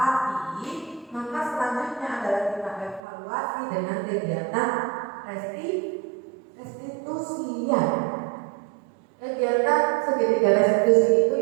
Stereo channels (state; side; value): drops out; left; at 3.0 s